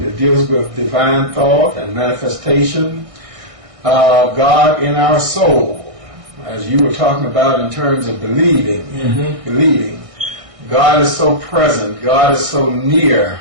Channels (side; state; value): left; late; 1.6 ms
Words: deals with divine thought and manifestation, God in our soul, as you were talking about in terms of believing. God is so present, God is so near